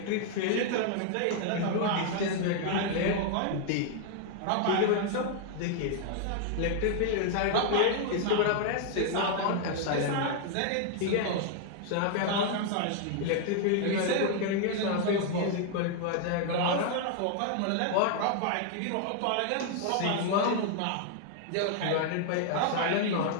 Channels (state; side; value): different; both; correlation 0.00